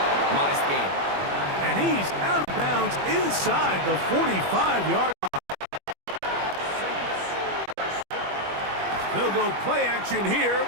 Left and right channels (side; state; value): left; late; 21 ms